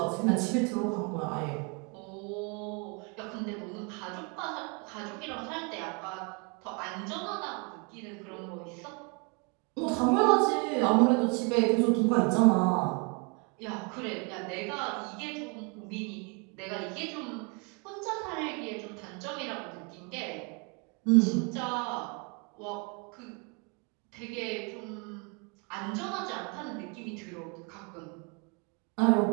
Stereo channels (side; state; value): left; quieter; 33.3 dB